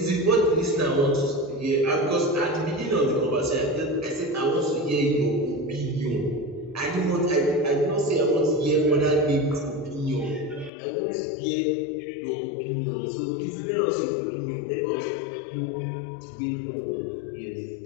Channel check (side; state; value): right; drops out; at 10.7 s